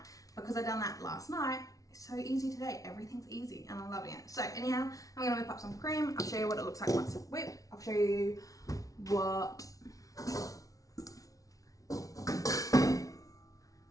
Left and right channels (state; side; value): late; right; 0.17 ms